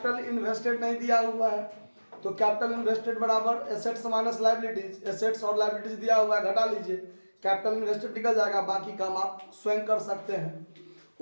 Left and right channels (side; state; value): both; inverted; correlation -1.00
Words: इन्वेस्टेड नहीं दिया हुआ है, तो कैपिटल इन्वेस्टेड बराबर एसेट्स माइनस लायबिलिटीज, एसेट्स और लायबिलिटीज दिया हुआ है, घटा लीजिए, कैपिटल इन्वेस्टेड निकल जाएगा, बाकी काम आप स्वयं कर सकते हैं।